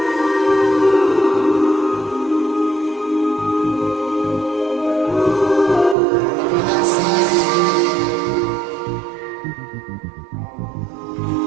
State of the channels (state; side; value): drops out; left; at 6.0 s